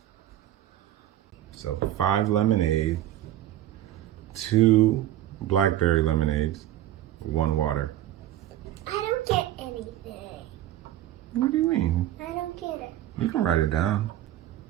So 5 lemonade, 2 blackberry lemonades, 1 water. I don't get anything. What do you mean? I don't get it. You can write it down.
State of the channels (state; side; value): quieter; left; 13.0 dB